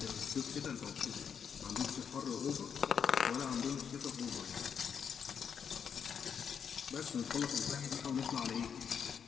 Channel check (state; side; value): quieter; right; 7.2 dB